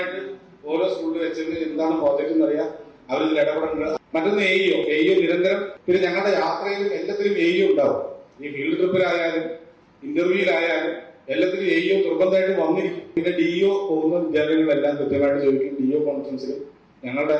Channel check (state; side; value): identical; both; correlation 1.00